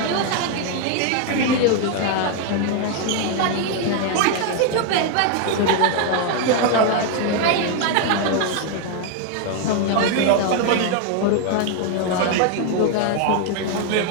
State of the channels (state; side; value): different; both; correlation 0.01